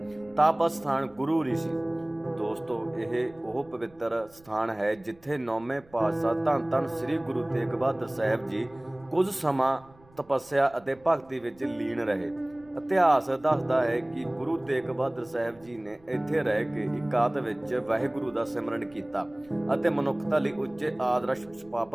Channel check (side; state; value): right; noise; rumble, 27 dB below the sound